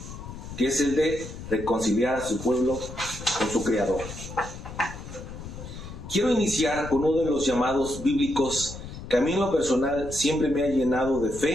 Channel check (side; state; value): left; noise; rumble, 11 dB below the sound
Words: que es el de reconciliar a su pueblo con su Creador. Quiero iniciar con uno de los llamados bíblicos que a mí en lo personal siempre me ha llenado de